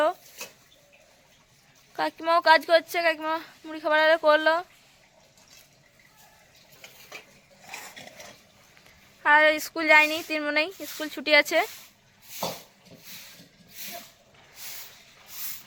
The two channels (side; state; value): both; identical; correlation 1.00